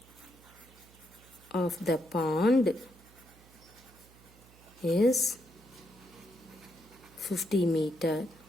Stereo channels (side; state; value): right; noise; hum, 24 dB below the sound